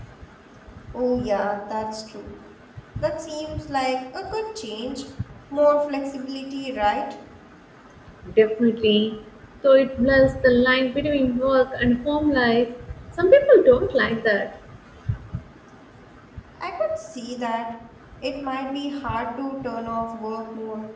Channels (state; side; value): identical; both; correlation 1.00